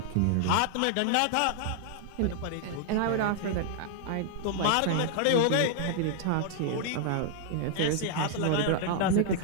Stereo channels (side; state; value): both; different; correlation 0.00